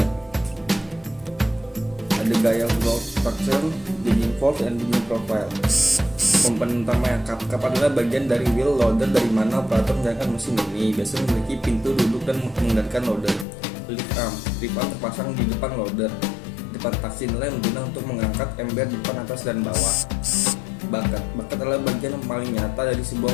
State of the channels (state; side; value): drops out; right; at 13.5 s